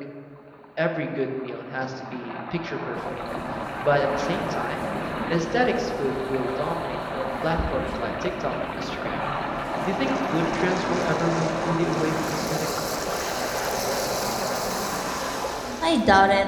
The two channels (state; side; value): identical; both; correlation 1.00